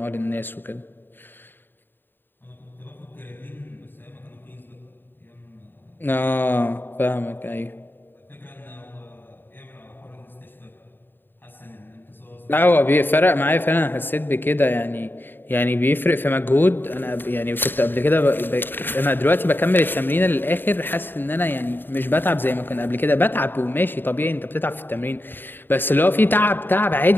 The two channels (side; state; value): right; late; 0.095 ms